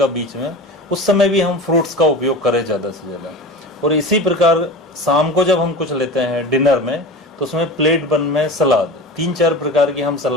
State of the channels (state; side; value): normal; both; correlation 0.31